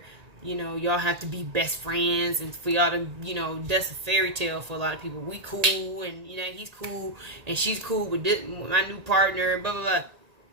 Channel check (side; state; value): left; late; 1.8 ms